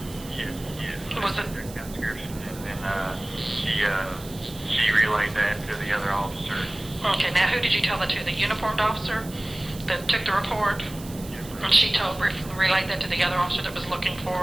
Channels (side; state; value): right; noise; hiss, 17 dB below the sound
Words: Yes. Was it? Description, and then she relayed that to the other officer. Okay. Now, who did you tell that to? The uniformed officer that took the report, Yes, ma'am. and she relayed that to the other officer that was looking